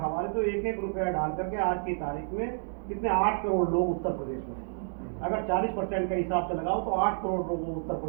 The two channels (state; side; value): silent; left; 58 dB below the other